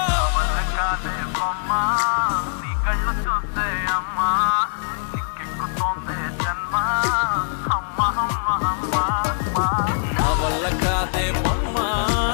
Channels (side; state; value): right; silent; digital silence